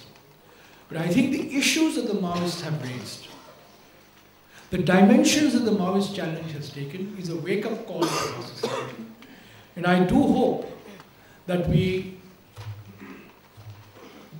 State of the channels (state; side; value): identical; both; correlation 1.00